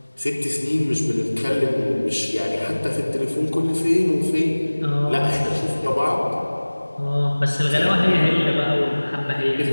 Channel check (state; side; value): inverted; both; correlation -1.00